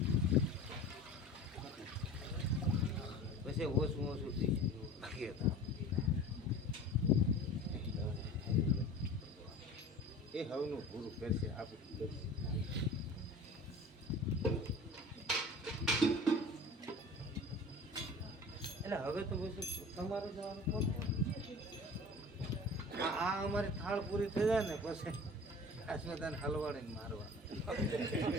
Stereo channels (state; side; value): normal; both; correlation 0.39